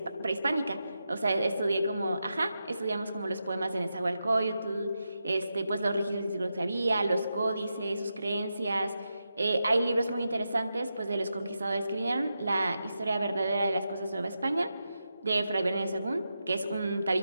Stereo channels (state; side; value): inverted; both; correlation -0.88